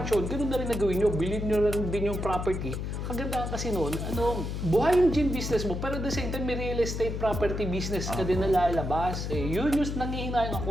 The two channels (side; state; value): left; noise; hum, 4 dB below the sound